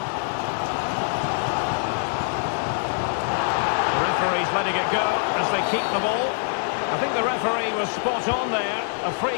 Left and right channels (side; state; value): right; silent; 62 dB below the other